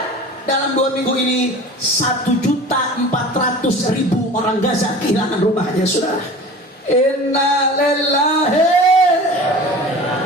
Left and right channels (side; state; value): both; normal; correlation 0.39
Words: dalam 2 minggu ini 1.400.000 orang Gaza kehilangan rumahnya, saudara. Innalillahi.